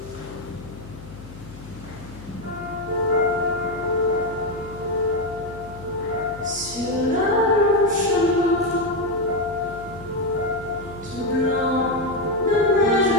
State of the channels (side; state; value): left; noise; hum, 15 dB below the sound